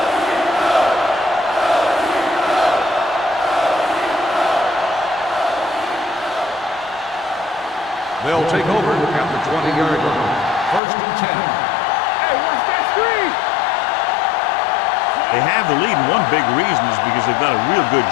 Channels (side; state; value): right; drops out; at 10.8 s